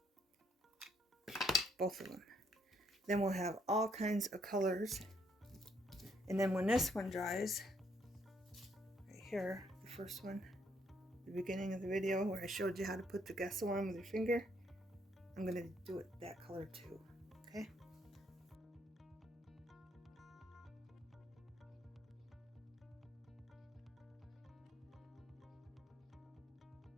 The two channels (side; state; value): both; normal; correlation 0.70